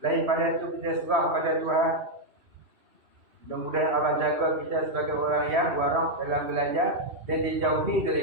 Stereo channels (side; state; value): left; late; 2.7 ms